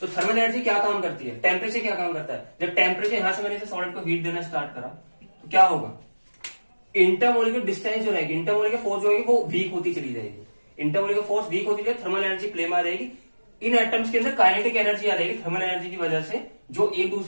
थर्मल एनर्जी क्या काम करती है, टेम्परेचर क्या काम करता है। जब टेम्परेचर यहां से मैंने इसे सॉलिड को हीट देना स्टार्ट करा तो क्या होगा, इंटरमोलिकुलर डिस्टेंस जो रहेगी, इंटरमोलिकुलर फोर्स जो होगी वो वीक होती चली जाएगी, इंटरमोलिकुलर फोर्स वीक होती जाएगी, थर्मल एनर्जी प्ले में आ जाएगी। इन एटम्स के अंदर काइनेटिक एनर्जी आ जाएगी थर्मल एनर्जी की वजह से, जो एक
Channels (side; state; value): both; inverted; correlation -1.00